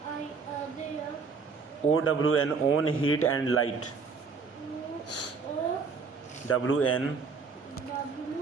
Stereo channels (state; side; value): quieter; left; 5.0 dB